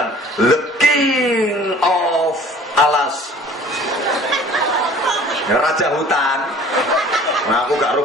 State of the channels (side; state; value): both; normal; correlation 0.49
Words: The King of Alas, Raja Hutan. Nah, aku gak tahu